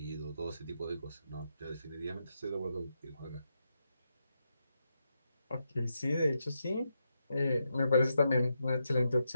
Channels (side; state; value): both; inverted; correlation -0.84